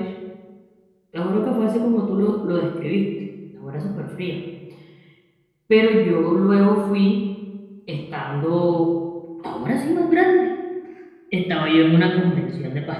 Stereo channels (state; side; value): identical; both; correlation 1.00